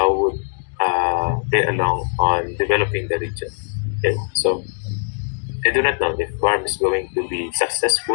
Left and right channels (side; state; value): right; silent; digital silence